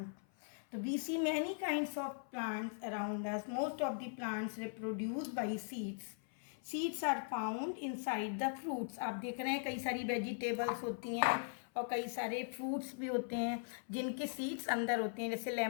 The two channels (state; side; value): silent; right; 51 dB below the other